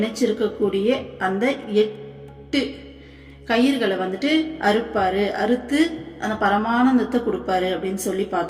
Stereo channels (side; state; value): both; identical; correlation 1.00